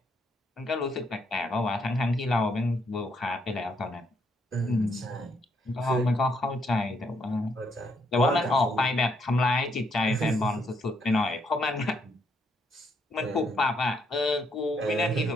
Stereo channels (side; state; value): both; normal; correlation 0.74